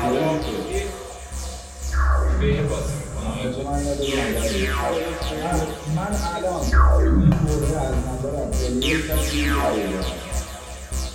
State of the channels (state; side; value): identical; both; correlation 1.00